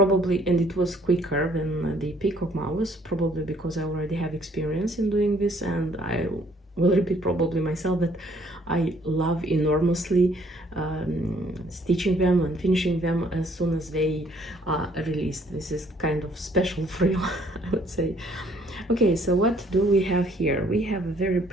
and it was quicker than the Peacock mouse, probably because I already have experience in doing this, and I will repeat probably myself that I love enormously stitching them and finishing them as soon as they are released. This is kind of special thrill, I would say. Okay, so what do we have here? We have a very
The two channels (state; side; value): normal; both; correlation 0.63